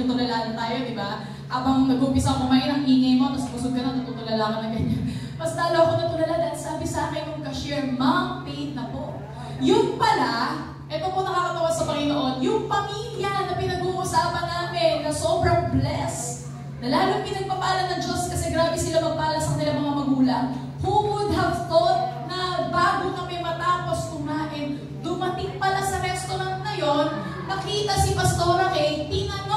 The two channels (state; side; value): identical; both; correlation 1.00